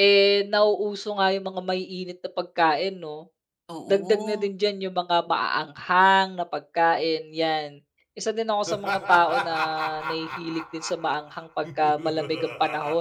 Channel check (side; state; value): both; identical; correlation 1.00